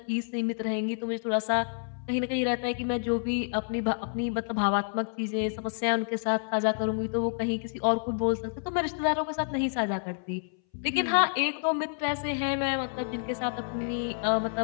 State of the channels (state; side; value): silent; right; 59 dB below the other